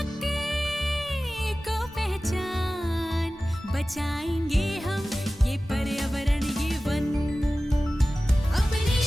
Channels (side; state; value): both; normal; correlation 0.96